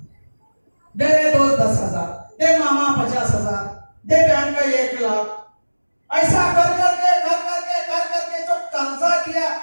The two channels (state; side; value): inverted; both; correlation -1.00